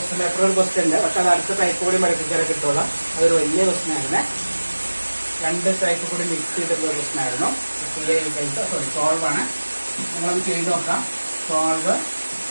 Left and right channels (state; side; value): inverted; both; correlation -1.00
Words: പേപ്പർ ഒരു ക്വസ്റ്റ്യൻ ഉണ്ട്, പക്ഷെ അത് അടുത്ത ടൈപ്പ് കൂടി പഠിപ്പിച്ചാലേ കിട്ടുള്ളൂ. അതൊരു വലിയ ക്വസ്റ്റ്യൻ ആയിരുന്നു. 2 ടൈപ്പ് കൂടി മിക്സ് ചെയ്തിട്ടുള്ള ക്വസ്റ്റ്യൻ ആയിരുന്നു. സോൾവ് ആണ്. നിങ്ങളൊന്ന് ചെയ്ത് നോക്കാം. Solve